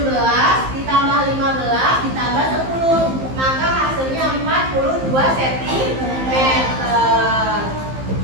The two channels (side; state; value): left; late; 15 ms